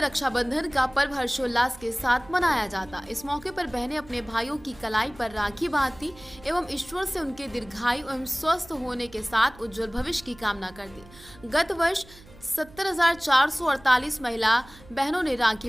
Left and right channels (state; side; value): noise; right; hum, 22 dB below the sound